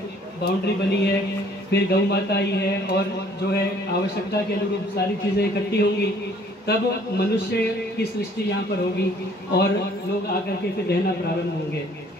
बाउंड्री बनी है, फिर गौ माता आई है, और जो है आवश्यकता के अनुरूप सारी चीज़ें इकट्ठी होंगी, तब मनुष्य की सृष्टि यहाँ पर होगी और लोग आकर के फिर रहना प्रारंभ होंगे।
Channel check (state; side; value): normal; both; correlation 0.57